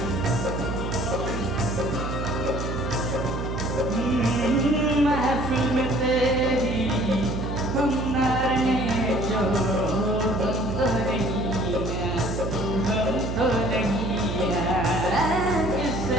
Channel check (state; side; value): noise; right; hum, 3 dB below the sound